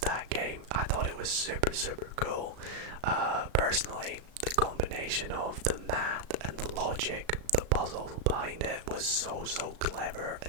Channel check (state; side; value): late; left; 36 ms